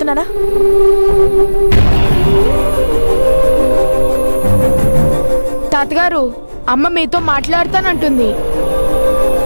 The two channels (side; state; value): both; inverted; correlation -1.00